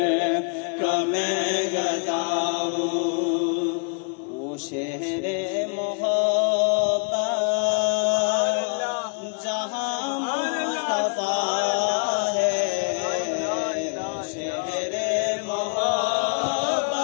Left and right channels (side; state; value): right; quieter; 39.0 dB